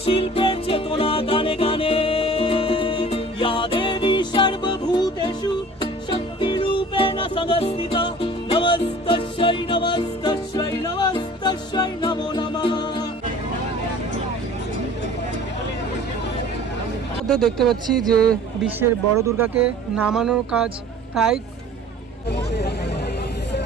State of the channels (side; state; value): both; normal; correlation 0.46